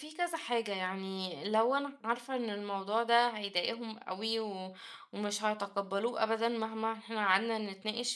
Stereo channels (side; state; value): both; identical; correlation 1.00